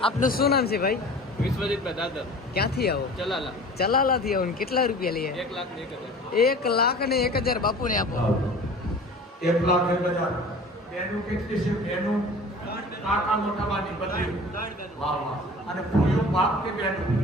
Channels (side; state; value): both; normal; correlation 0.42